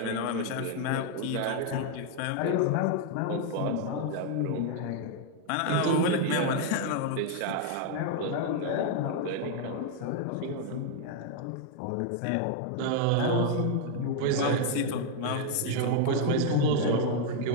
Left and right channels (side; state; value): both; different; correlation 0.00